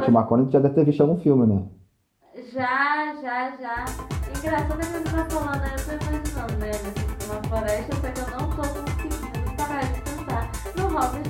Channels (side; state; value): both; identical; correlation 1.00